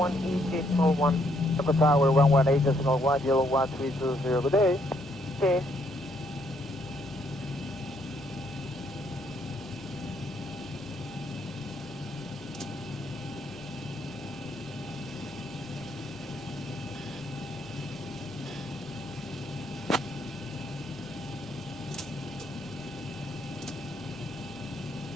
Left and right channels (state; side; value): normal; both; correlation 0.71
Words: Alpha Tower 118.01, yellow 1320, good day. Okay.